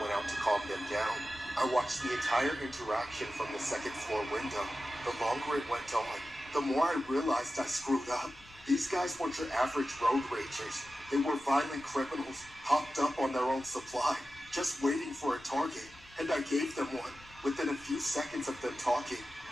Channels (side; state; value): left; noise; rumble, 24 dB below the sound